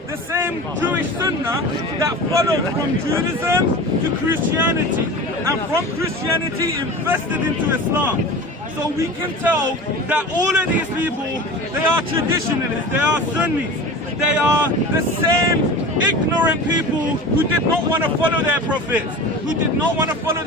the same Jewish sunnah that followed from Judaism to Christianity, and from Christianity infested into Islam. So we can tell that all of these people, they are traditionalists, they are Sunnis. They are the same ignorant people who did not want to follow their prophets, who did not want to follow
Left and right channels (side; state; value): both; normal; correlation 0.34